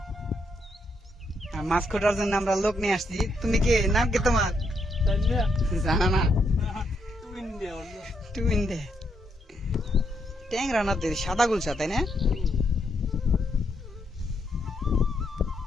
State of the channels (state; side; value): normal; both; correlation 0.78